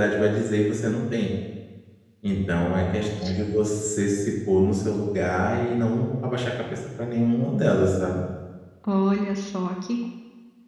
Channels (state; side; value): identical; both; correlation 1.00